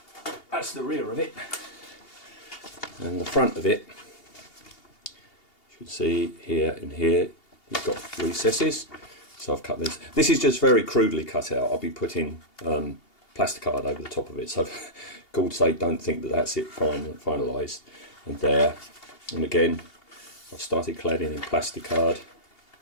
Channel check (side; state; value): right; late; 2.8 ms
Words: that's the rear of it, and the front of it, you should see here and here, you've got recesses. So I've cut this. This is just very crudely cut out. I'll be putting plasticard over the top of it. So for God's sake, don't think that that's it finalised. And there, and again, I've started cladding in plasticard